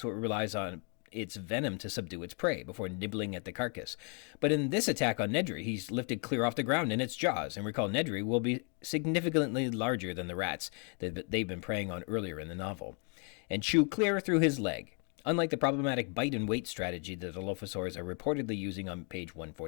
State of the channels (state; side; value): quieter; right; 38.5 dB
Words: it relies on its venom to subdue its prey before nibbling at the carcass. But in this attack on Nedry, he's lifted clear off the ground in its jaws. And recall, Nedry will be significantly larger than the rats that they've been preying on earlier in the novel, and chew clear through his leg. Unlike the problematic bite and wait strategy that the Dilophosaurs are reportedly using on page